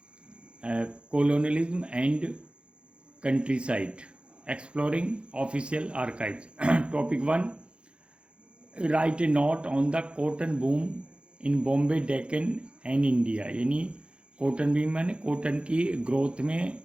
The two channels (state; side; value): late; left; 0.057 ms